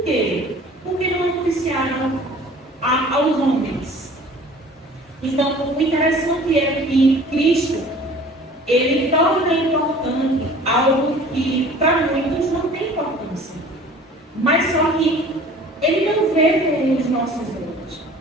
quê? Por que não noticiaram aos homens? Então, o interessante é que Cristo, ele torna importante algo que para muitos não tem importância. Mas só que ele não vê com os nossos olhos.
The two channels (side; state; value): both; normal; correlation 0.47